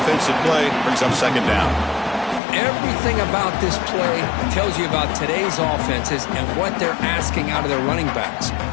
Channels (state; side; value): drops out; right; at 2.4 s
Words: play. Brings up 2nd down. Everything about this play tells you about today's offenses and what they're asking out of their running backs.